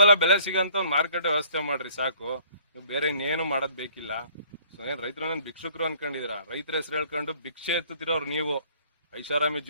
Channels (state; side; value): inverted; both; correlation -0.57